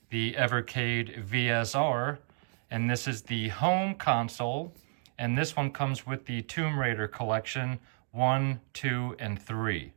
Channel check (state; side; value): silent; left; digital silence